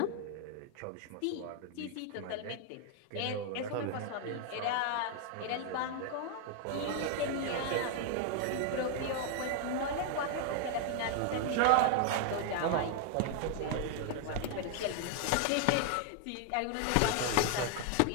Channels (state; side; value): different; both; correlation 0.00